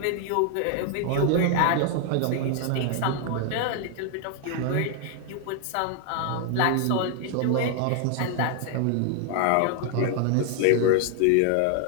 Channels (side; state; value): both; different; correlation 0.00